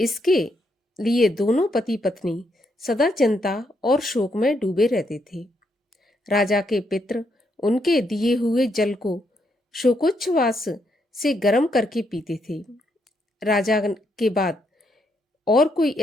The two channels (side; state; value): both; normal; correlation 0.77